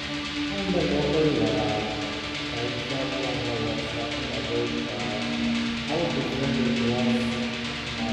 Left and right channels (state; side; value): noise; right; hum, 21 dB below the sound